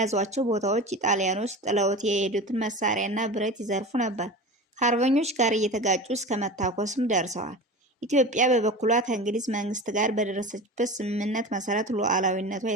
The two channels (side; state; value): both; normal; correlation 0.32